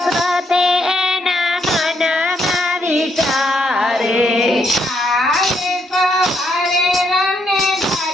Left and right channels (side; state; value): both; normal; correlation 0.74